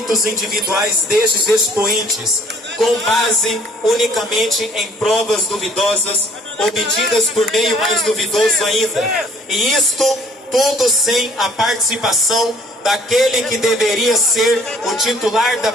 individuais destes expoentes, com base unicamente em provas duvidosas, obtidas por meio mais duvidoso ainda. E isto tudo sem a participação daquele que deveria ser o titular da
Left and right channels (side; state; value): both; normal; correlation 0.58